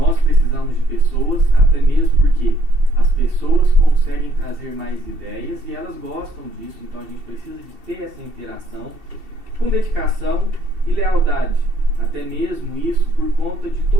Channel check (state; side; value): late; left; 2.7 ms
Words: precisamos de pessoas, até mesmo porque as pessoas conseguem trazer mais ideias e elas gostam disso, então a gente precisa de ter essa interação com dedicação e lealdade. Até mesmo isso por conta de